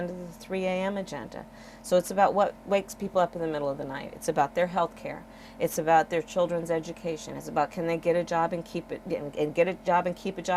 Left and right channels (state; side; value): identical; both; correlation 1.00